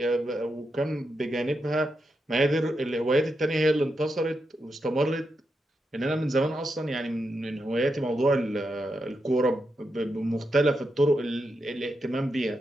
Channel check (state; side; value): normal; both; correlation 0.85